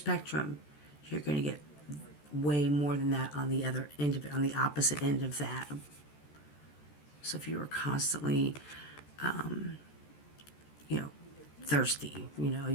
you're going to get way more than that on the other end of it, on the opposite end of that. So if you were constantly, thirsty,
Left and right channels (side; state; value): right; late; 14 ms